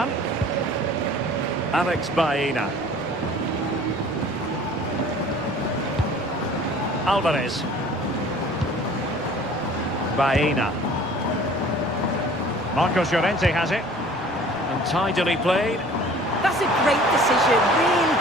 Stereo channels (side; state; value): right; noise; rumble, 27 dB below the sound